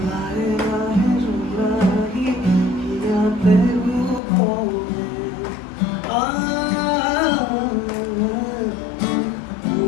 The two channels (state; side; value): drops out; right; at 4.2 s